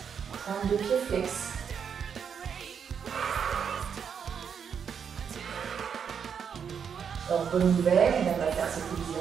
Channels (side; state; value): left; quieter; 7.2 dB